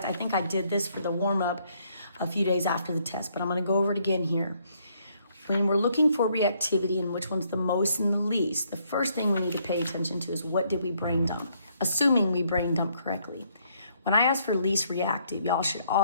I think I did this for the warm-up a few days after the test, but I'm going to go over it again here. When we're looking for reactivity and which one's the most and the least, the first thing we need to pay attention to is what did we brain dump, assuming we brain dump correctly. When I ask for least reactive, y'all should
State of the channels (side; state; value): both; inverted; correlation -0.69